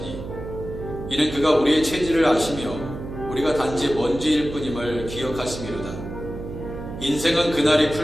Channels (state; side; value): noise; right; hum, 10 dB below the sound